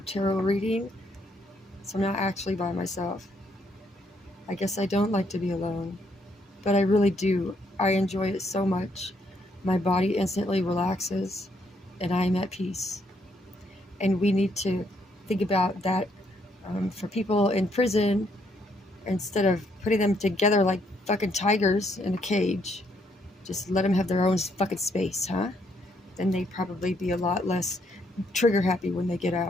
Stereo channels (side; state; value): both; normal; correlation 0.72